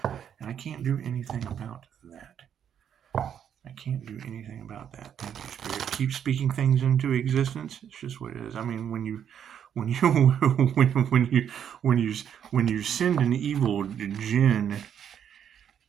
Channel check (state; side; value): quieter; left; 8.8 dB